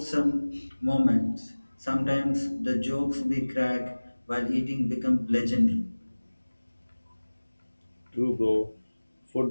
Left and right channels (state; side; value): inverted; both; correlation -1.00